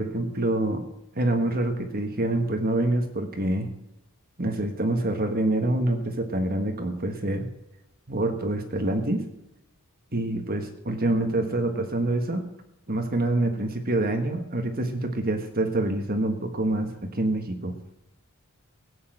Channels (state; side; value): normal; both; correlation 0.61